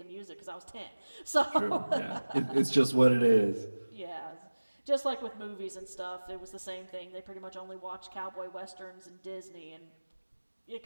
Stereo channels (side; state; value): both; inverted; correlation -1.00